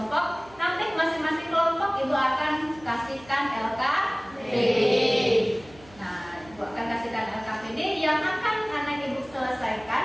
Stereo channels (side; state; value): right; noise; hum, 23 dB below the sound